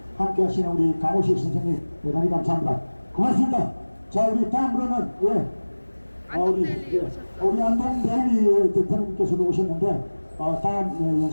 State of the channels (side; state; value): both; inverted; correlation -1.00